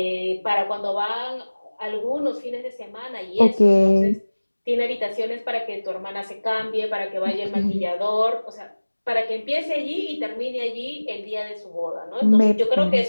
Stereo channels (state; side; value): inverted; both; correlation -1.00